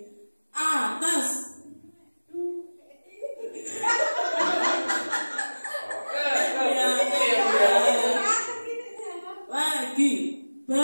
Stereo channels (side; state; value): both; inverted; correlation -1.00